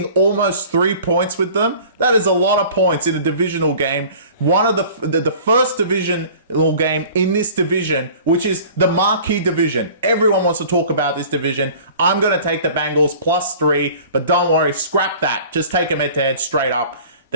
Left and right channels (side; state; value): both; inverted; correlation -0.45